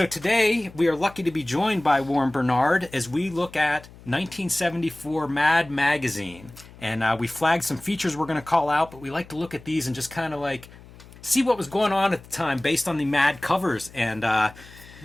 today, we are lucky to be joined by Warren Bernard as we look at 1974 Mad Magazine. And we flagged some features we're going to call out, but we like to look at these and just kind of like see what was going on at the time based on the Mad covers. And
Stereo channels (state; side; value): noise; left; hum, 21 dB below the sound